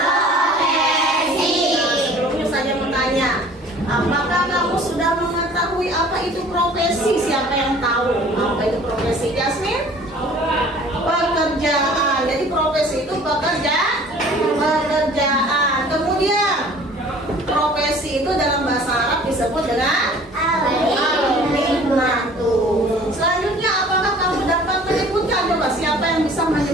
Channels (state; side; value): normal; both; correlation 0.50